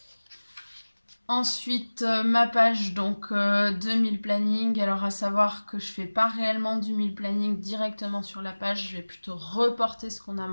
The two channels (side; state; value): both; inverted; correlation -1.00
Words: Ensuite, ma page donc de meal planning. Alors à savoir que je fais pas réellement du meal planning directement sur la page, je vais plutôt reporter ce qu'on a